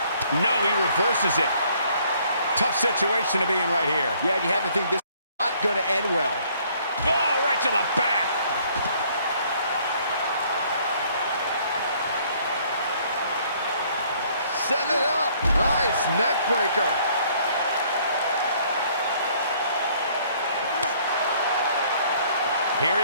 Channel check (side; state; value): both; inverted; correlation -0.62